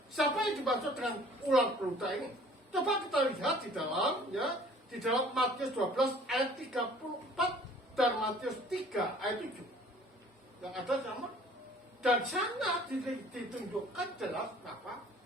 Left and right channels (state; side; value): normal; both; correlation 0.52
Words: siapa yang dimaksud dengan ular beludak ini? Coba kita lihat di dalam Matius 12 ayat 34 dan Matius 3 ayat 7. Yang ada sama. Dan sana ditunjukkan jelas apa?